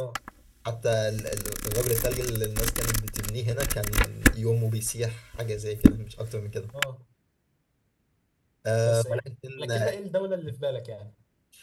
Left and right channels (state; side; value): identical; both; correlation 1.00